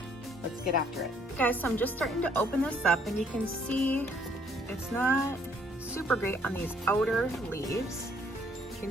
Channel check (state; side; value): normal; both; correlation 0.64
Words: let's get after it. Guys, so I'm just starting to open this up and you can see it's not super great on these outer leaves. You can